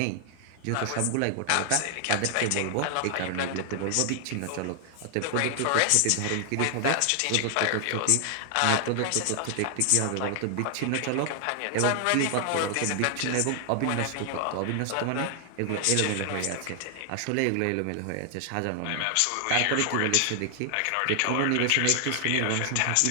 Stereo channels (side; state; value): both; different; correlation 0.00